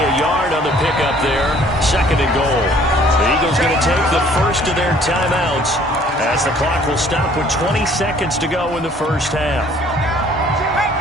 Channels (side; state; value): both; normal; correlation 0.57